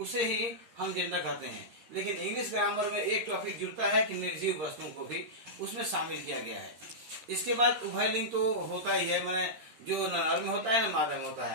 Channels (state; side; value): late; left; 13 ms